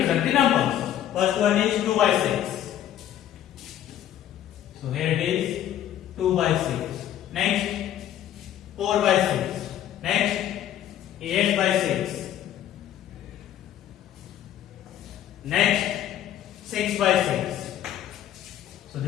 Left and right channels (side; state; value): right; quieter; 11.4 dB